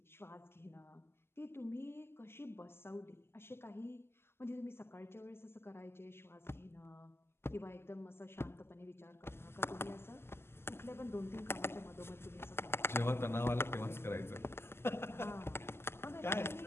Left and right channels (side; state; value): right; late; 0.12 ms